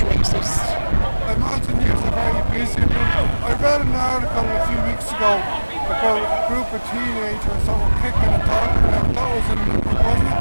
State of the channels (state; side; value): inverted; both; correlation -1.00